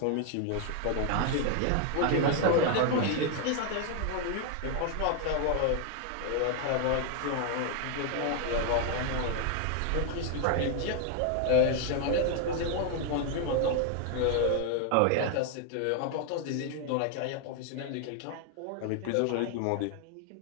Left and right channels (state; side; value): different; both; correlation 0.00